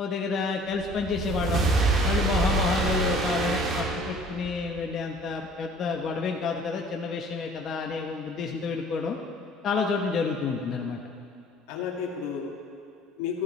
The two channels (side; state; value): both; normal; correlation 0.51